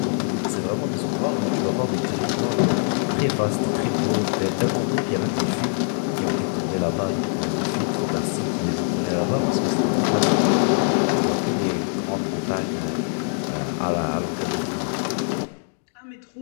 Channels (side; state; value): right; silent; 62 dB below the other